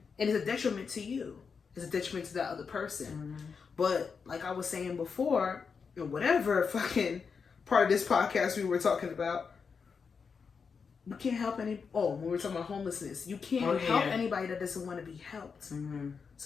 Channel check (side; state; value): right; quieter; 5.7 dB